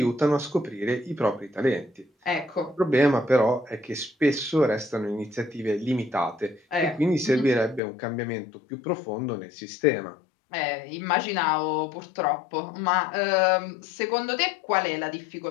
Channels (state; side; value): drops out; right; at 7.8 s